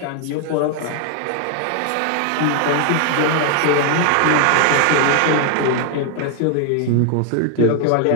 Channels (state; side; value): different; both; correlation 0.00